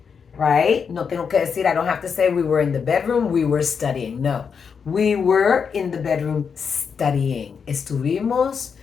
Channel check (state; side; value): quieter; right; 6.3 dB